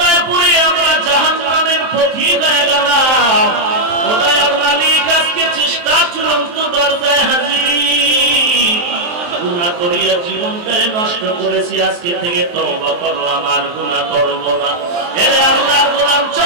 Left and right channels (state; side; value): late; left; 23 ms